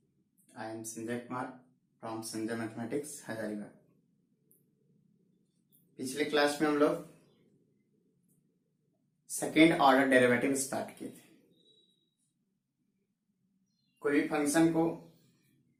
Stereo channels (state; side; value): identical; both; correlation 1.00